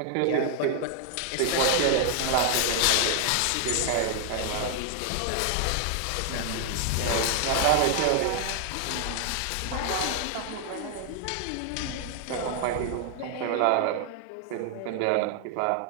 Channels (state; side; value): different; both; correlation 0.00